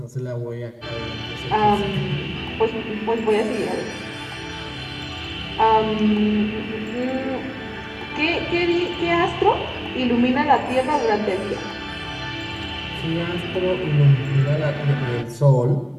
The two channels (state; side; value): identical; both; correlation 1.00